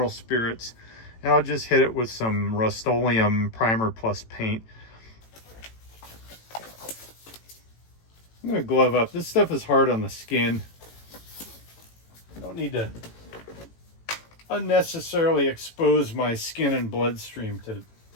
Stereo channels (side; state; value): right; late; 18 ms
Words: spirits, and I'll just hit it with some Rust-Oleum Primer Plus paint. I'm going to glove up. This stuff is hard on the skin. I don't need to unnecessarily expose my skin and bloodstream to